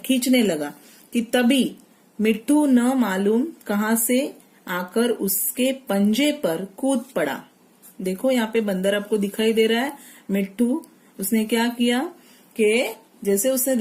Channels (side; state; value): both; identical; correlation 1.00